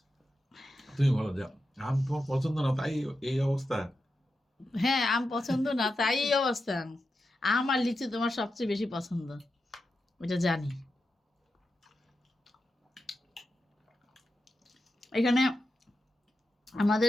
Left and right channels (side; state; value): both; normal; correlation 0.89